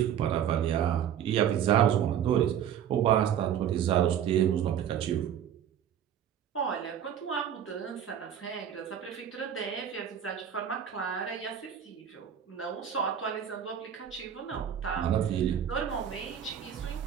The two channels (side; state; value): left; quieter; 9.3 dB